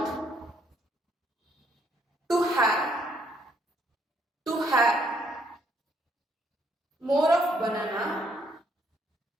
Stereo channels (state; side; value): normal; both; correlation 0.70